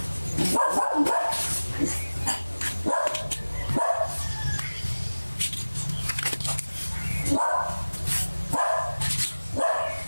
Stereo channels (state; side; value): inverted; both; correlation -1.00